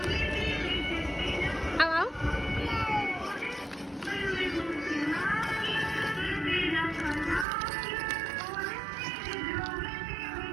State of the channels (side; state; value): left; drops out; at 7.5 s